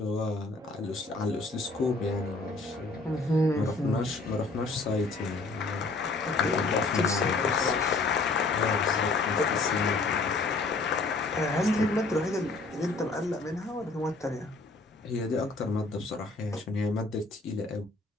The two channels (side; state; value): right; quieter; 3.4 dB